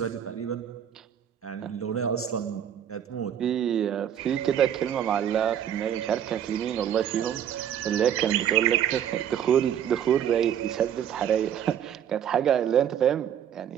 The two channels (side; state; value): left; quieter; 9.6 dB